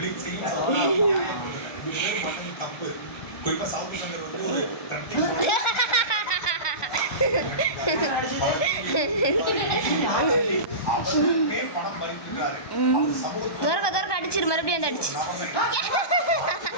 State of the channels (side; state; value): right; late; 1.2 ms